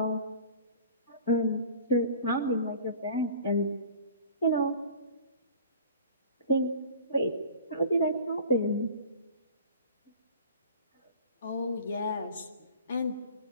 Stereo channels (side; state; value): both; inverted; correlation -0.43